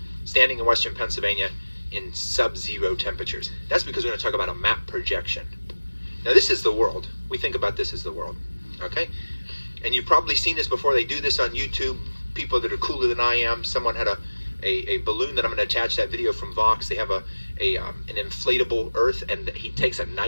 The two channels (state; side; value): inverted; both; correlation -1.00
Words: Standing in western Pennsylvania in sub-zero temperatures. That's because we're going to talk about a map projection. Now this is the world. We think about this as the world, okay? And you've probably seen this before. They do this on YouTube. People that are cooler than I am. Someone had a balloon that I'm going to attach that video from Vox. They have an inflatable Earth, and he takes a